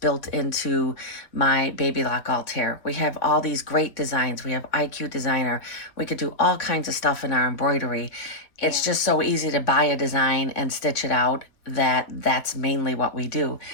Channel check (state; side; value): late; right; 3.6 ms